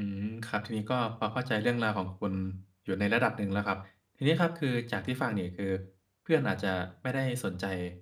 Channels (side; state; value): both; identical; correlation 1.00